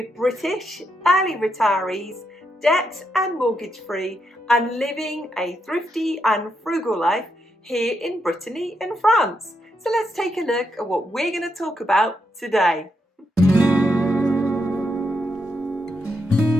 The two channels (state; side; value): normal; both; correlation 0.81